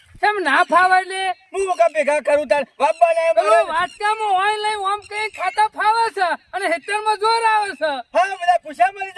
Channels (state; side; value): identical; both; correlation 1.00